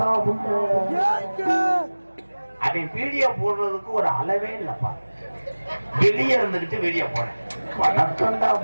அவன் வீடியோ போடுறதுக்கு ஒரு அளவே இல்லப்பா. வெளியே இருந்துகிட்டு வீடியோ போறேன். வணக்கம்டா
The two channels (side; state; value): both; inverted; correlation -1.00